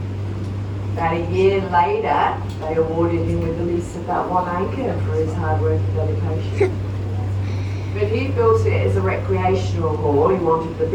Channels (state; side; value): identical; both; correlation 1.00